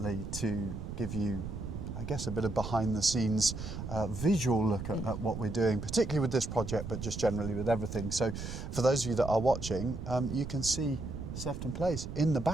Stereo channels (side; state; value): right; noise; rumble, 7 dB below the sound